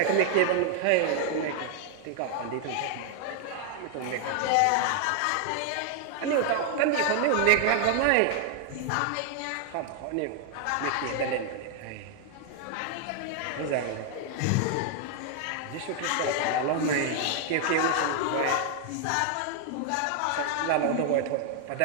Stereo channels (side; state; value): both; different; correlation 0.00